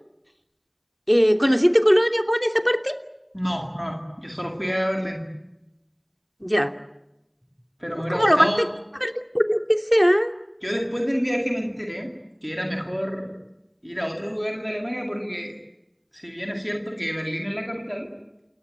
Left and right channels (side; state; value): both; identical; correlation 1.00